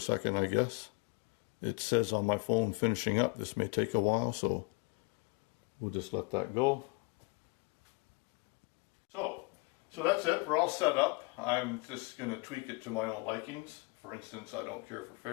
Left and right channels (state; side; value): quieter; right; 29.8 dB